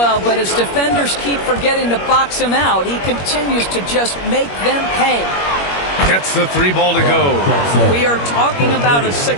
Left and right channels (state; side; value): late; right; 21 ms